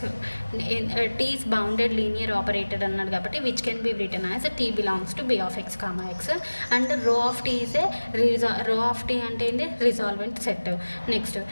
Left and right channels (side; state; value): both; inverted; correlation -1.00